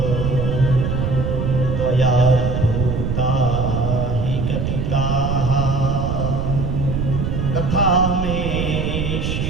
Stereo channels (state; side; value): noise; right; rumble, 1 dB below the sound